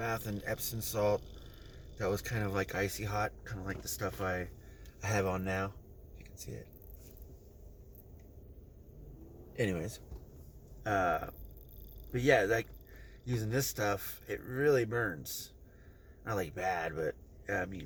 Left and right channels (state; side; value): identical; both; correlation 1.00